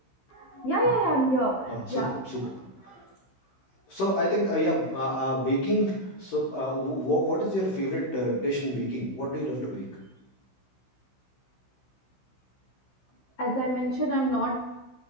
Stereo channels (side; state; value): right; late; 16 ms